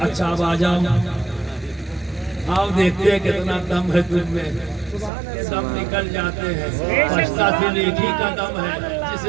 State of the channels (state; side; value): drops out; left; at 5.1 s